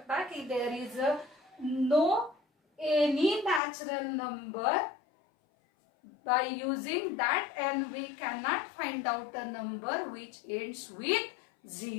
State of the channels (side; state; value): right; drops out; at 3.6 s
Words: की there is no any natural number by using that n we cannot find out a number which ends with